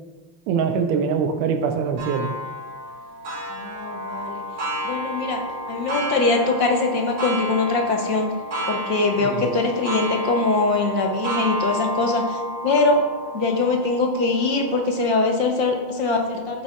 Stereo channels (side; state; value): left; late; 5.6 ms